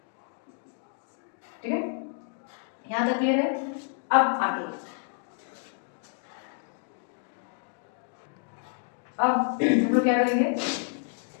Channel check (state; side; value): silent; right; 58 dB below the other